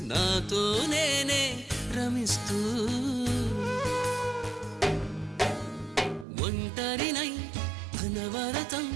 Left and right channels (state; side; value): drops out; left; at 6.2 s